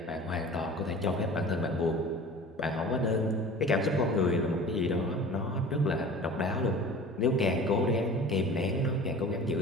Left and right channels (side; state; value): both; normal; correlation 0.41